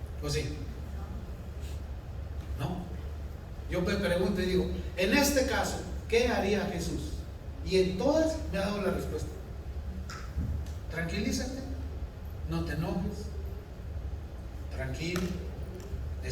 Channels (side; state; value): both; identical; correlation 1.00